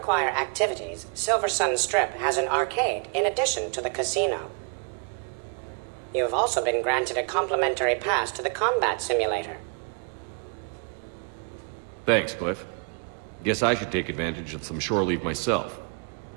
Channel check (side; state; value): left; quieter; 39.5 dB